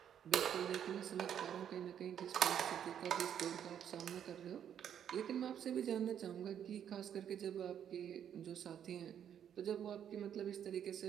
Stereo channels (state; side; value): quieter; left; 9.2 dB